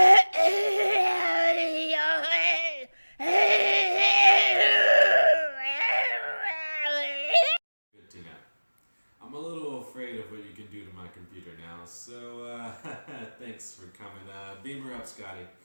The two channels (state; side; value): inverted; both; correlation -1.00